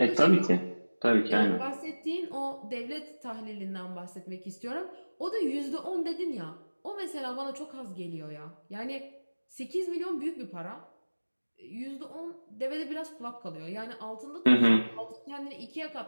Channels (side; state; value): both; inverted; correlation -1.00